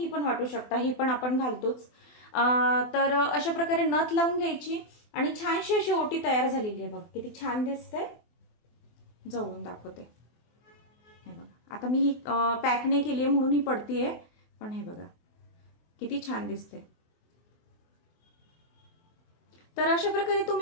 पण वाटू शकता, ही पण आपण घालतोच. तर अशा प्रकारे नथ लावून घ्यायची आणि छानशी अशी ओटी तयार झालेली आहे. बघा किती छान दिसते, जवळून दाखवते. हे बघा, आता मी ही पॅक नाही केली आहे म्हणून ही पडतीये, पण हे बघा किती छान दिसते. तर अशा प्रकारे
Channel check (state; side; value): late; right; 24 ms